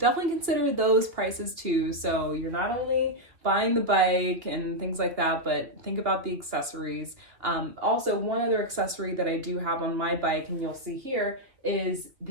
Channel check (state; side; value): late; left; 2.5 ms